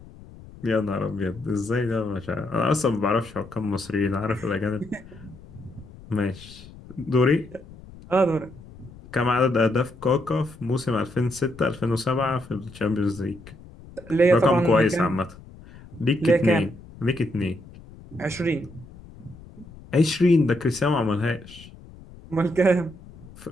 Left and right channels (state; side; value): noise; left; rumble, 19 dB below the sound